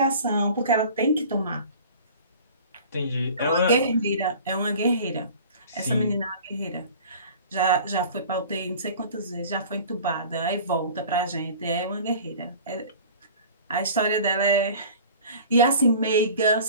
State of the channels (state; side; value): inverted; both; correlation -0.43